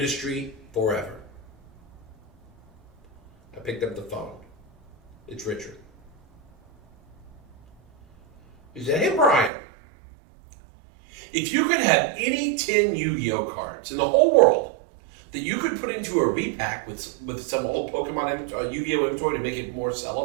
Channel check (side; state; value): left; drops out; at 9.5 s